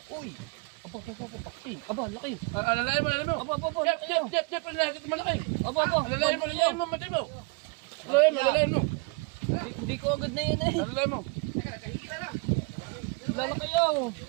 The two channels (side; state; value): left; quieter; 29.5 dB